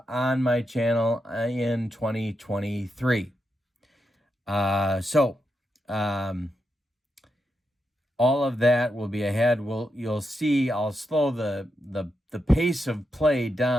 on my channel in 2023. all of that will be ahead. You'll see I'll slow the pace of play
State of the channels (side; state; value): both; normal; correlation 0.85